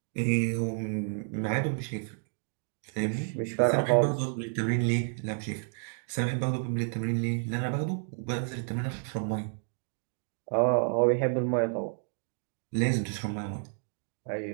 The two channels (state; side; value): silent; left; 57 dB below the other